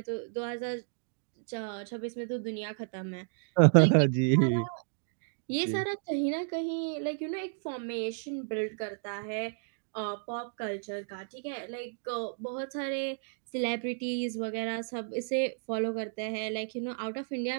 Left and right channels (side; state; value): left; silent; digital silence